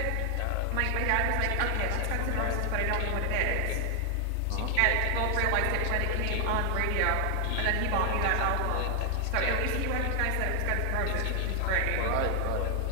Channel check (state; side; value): different; both; correlation 0.00